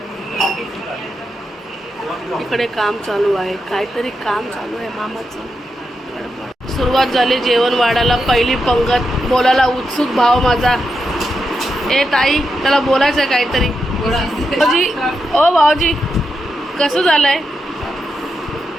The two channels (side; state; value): both; normal; correlation 0.85